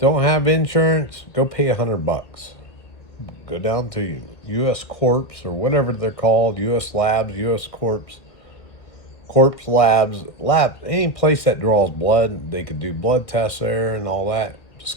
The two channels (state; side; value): late; right; 2.0 ms